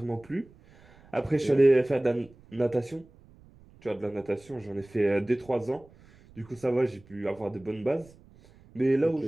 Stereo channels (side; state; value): right; noise; rumble, 26 dB below the sound